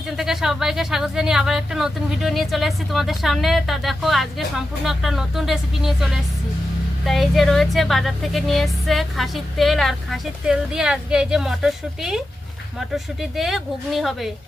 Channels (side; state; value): both; normal; correlation 0.90